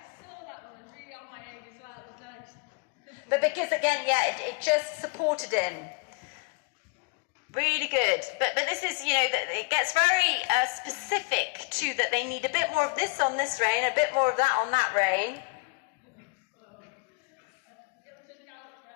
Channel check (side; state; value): right; quieter; 32.2 dB